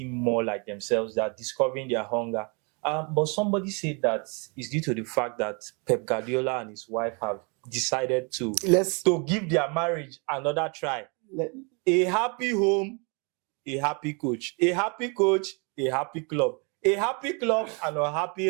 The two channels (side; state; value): left; quieter; 33.7 dB